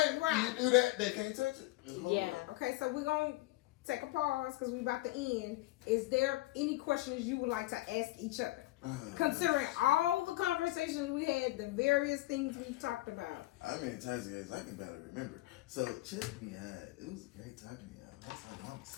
Right. You do that. They can't touch it. Yeah. Okay, so we're gonna take a pause because we're about to end. Is there any questions you would like to ask each other? Considering all the conversations we had, the various things we've talked about. I mean, Tazzy, I can barely remember. So check me out. It was great talking to y'all. That's all I'm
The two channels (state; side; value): quieter; right; 18.6 dB